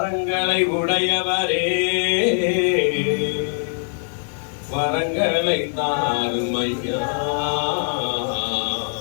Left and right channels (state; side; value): silent; right; digital silence